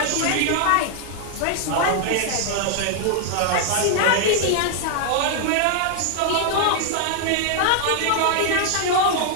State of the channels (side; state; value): both; different; correlation 0.00